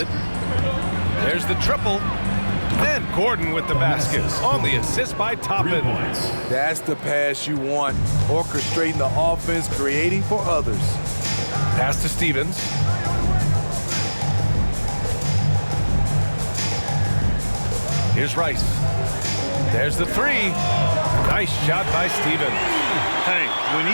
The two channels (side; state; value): both; inverted; correlation -1.00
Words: There's the triple. And Gordon with the basket on the assist by Toppin. That's the pass you want. Orchestrating the offense, creating for others. Pass to Stevens. Here's Rice. There's the 3. Nice shot by Stevens. Hey, when